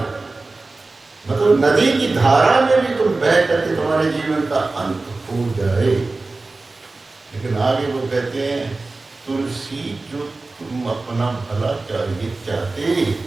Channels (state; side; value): quieter; left; 3.4 dB